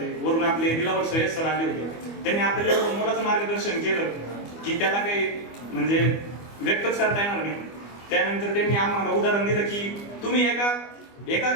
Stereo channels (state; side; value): late; right; 25 ms